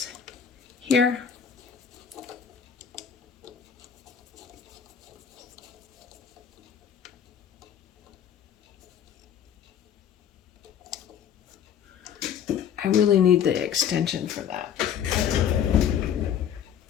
here. I really need the extension for that.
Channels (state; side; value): quieter; right; 8.6 dB